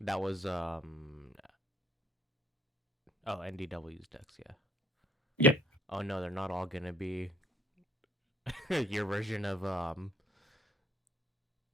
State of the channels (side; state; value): both; normal; correlation 0.59